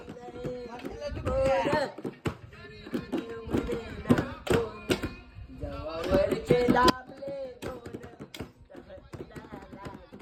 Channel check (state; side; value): identical; both; correlation 1.00